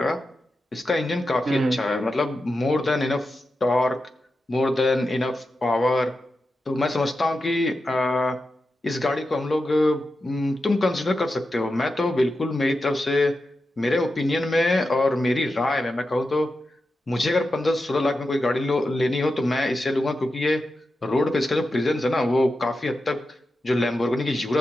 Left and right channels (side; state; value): both; normal; correlation 0.90